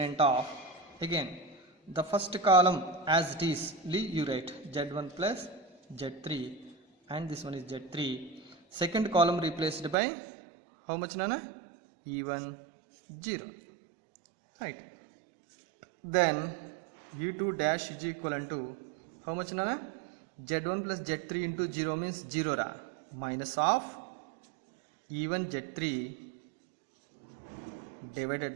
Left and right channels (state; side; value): drops out; left; at 10.0 s